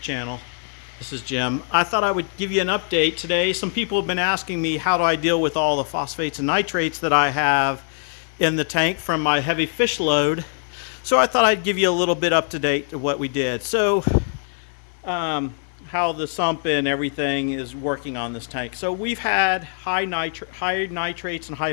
channel. This is Jim. I thought I would give you an update today. Some people have been asking me how do I deal with all the phosphates and nitrates that I have in the tank from my heavy fish load. So I thought I'd give you a little bit up to date to what we did. How the sump and everything is working on this tank. So we've had high nitrates and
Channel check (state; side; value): silent; right; 64 dB below the other